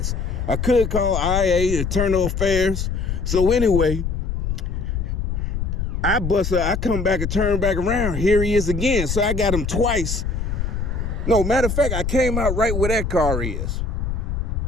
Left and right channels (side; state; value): left; noise; rumble, 2 dB below the sound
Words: I could call IA, Internal Affairs. So anyway, I come back and turn back around. Here he is again. So I got him twice. No, matter of fact, I came out right where that car is.